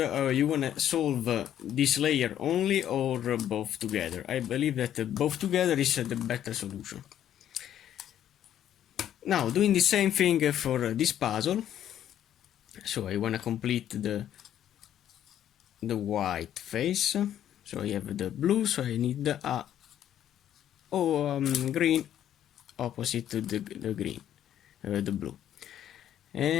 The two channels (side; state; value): right; quieter; 10.8 dB